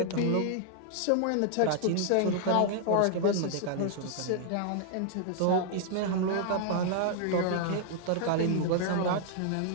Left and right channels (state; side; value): different; both; correlation -0.01